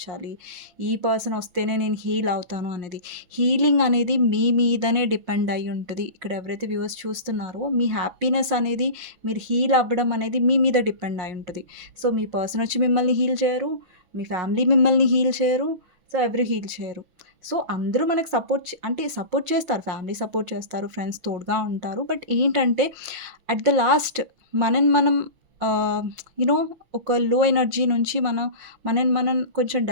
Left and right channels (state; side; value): late; left; 5.6 ms